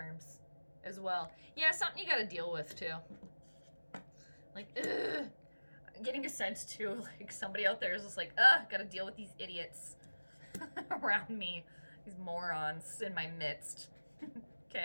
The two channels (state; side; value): inverted; both; correlation -1.00